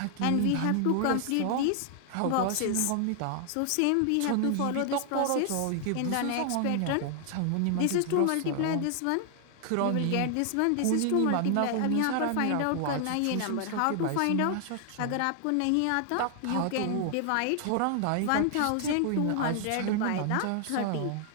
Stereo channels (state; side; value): different; both; correlation 0.00